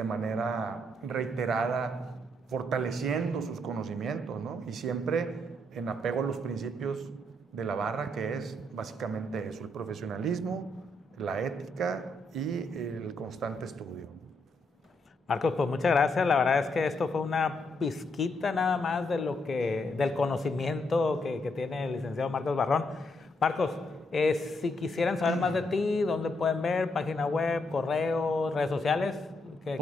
manera reiterada fortaleciendo sus conocimientos, ¿no? Y siempre en apego a los principios de la barra, que es básicamente eso, el profesionalismo, la ética y el constante estudio. Marcos, pues muchas gracias. La verdad es que esto fue una pizquita nada más del conocimiento que tiene el licenciado Marcos Barrón. Marcos, si quisieran saber más de ti, ¿dónde pueden ver? ¿Página web, correo, redes sociales?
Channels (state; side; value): normal; both; correlation 0.77